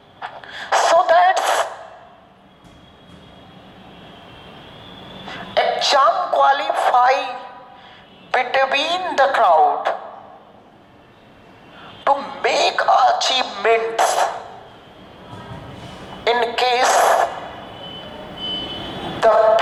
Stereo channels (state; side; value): identical; both; correlation 1.00